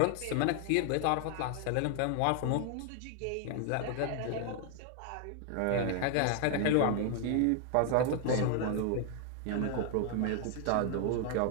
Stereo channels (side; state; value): both; different; correlation 0.00